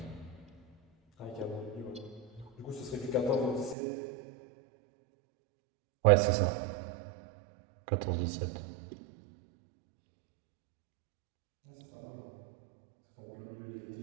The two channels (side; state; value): left; drops out; at 3.8 s